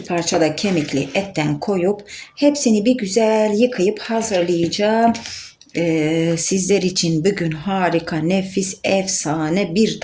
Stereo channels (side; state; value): both; identical; correlation 1.00